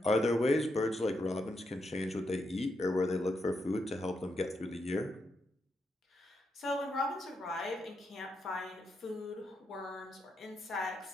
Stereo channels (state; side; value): normal; both; correlation 0.82